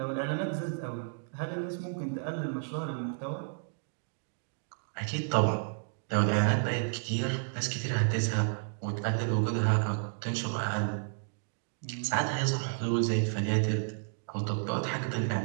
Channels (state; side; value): silent; left; digital silence